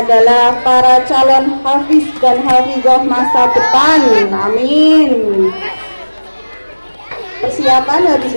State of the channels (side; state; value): both; inverted; correlation -1.00